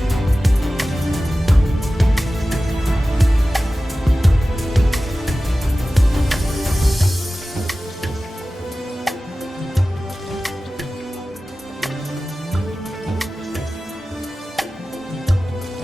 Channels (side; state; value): both; normal; correlation 0.96